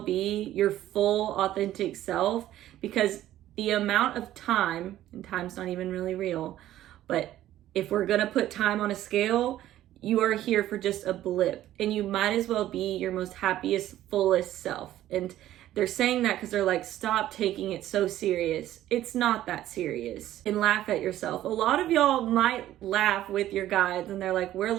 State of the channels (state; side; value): quieter; left; 13.4 dB